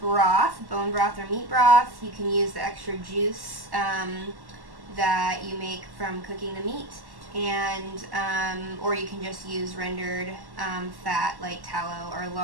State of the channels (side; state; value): left; late; 1.1 ms